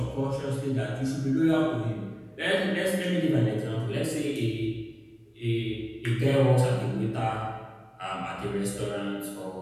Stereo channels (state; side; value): identical; both; correlation 1.00